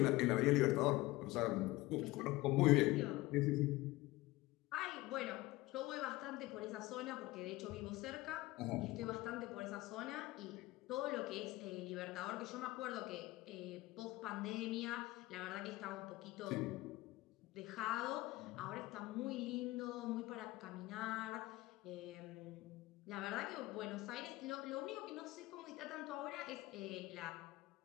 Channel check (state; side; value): quieter; right; 19.4 dB